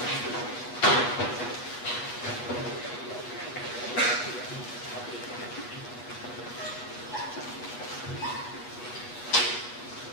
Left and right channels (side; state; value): right; late; 8.4 ms